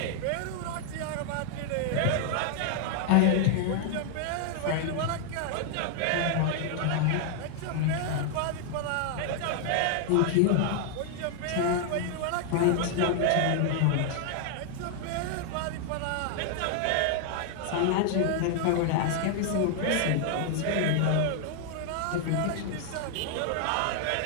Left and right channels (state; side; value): different; both; correlation 0.00